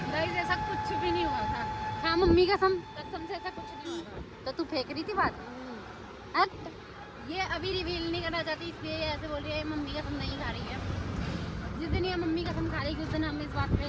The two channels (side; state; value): both; identical; correlation 1.00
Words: गाइस ऐसा कुछ भी नहीं हुआ था। हाँ मम्मी कसम से ऐसा कुछ नहीं हुआ था। तो तू फेंक रही थी बात? ये अभी रिवील नहीं करना चाहती इसलिए ये ऐसे बोल रही है मम्मी कसम नहीं खा रही है। जिस दिन ये मम्मी कसम खा रही उस दिन हम इस बात पे